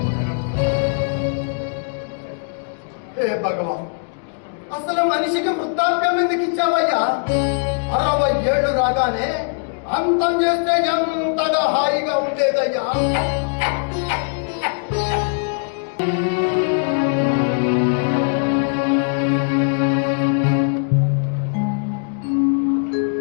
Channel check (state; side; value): silent; right; digital silence